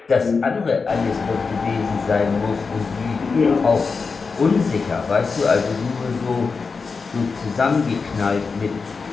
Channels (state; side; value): quieter; right; 4.8 dB